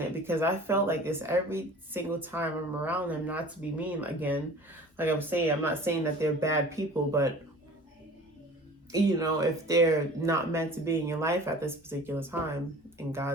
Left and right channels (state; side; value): normal; both; correlation 0.43